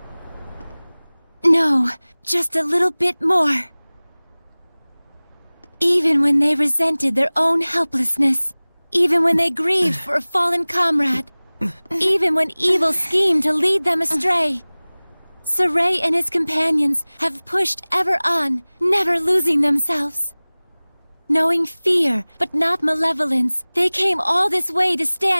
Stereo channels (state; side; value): inverted; both; correlation -1.00